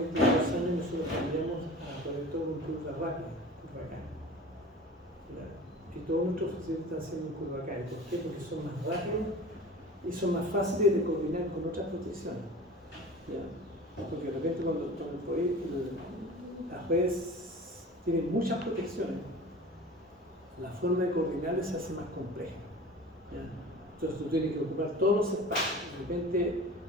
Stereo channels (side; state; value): both; normal; correlation 0.39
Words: 2 años nosotros cambiamos a poner todo un curva rápida, curva acá. Y todos nuestros fusibles están haciendo curva acá. ¿Por qué? Porque son más rápidos y son más fáciles de coordinar con otras protecciones. ¿Ya? Porque de repente cuando las redes tienen muchas protecciones, la forma de coordinarlas se hace más compleja. ¿Ya? Entonces tú tienes que ocupar todos los espacios. De repente